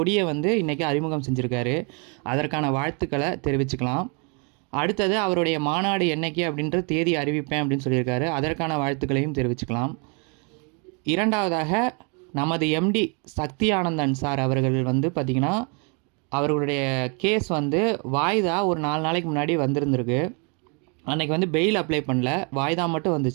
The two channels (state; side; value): quieter; left; 35.3 dB